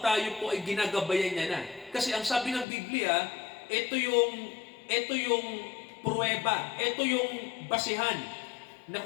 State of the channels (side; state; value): right; drops out; at 2.7 s